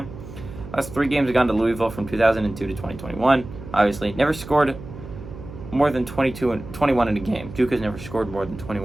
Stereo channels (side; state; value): right; noise; hum, 13 dB below the sound